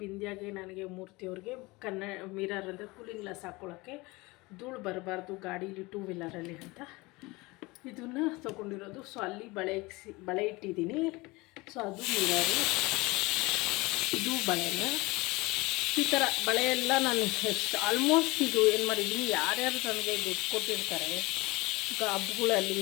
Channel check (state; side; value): quieter; right; 23.1 dB